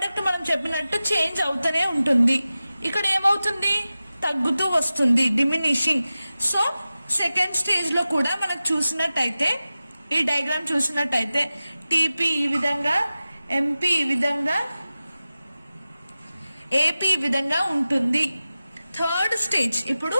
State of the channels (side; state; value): both; inverted; correlation -0.95